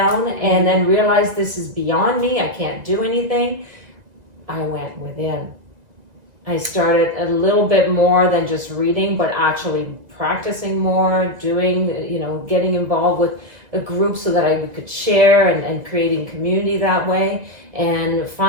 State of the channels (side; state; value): left; late; 1.9 ms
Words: and then realized this is beyond me, I can't do anything. I went within. I started a little bit more than just reading, but actually practicing more, doing, getting involved with a group so that I could share and creating community that way. And